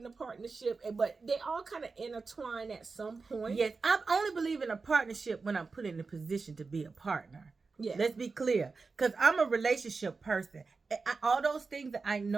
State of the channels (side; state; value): left; quieter; 4.3 dB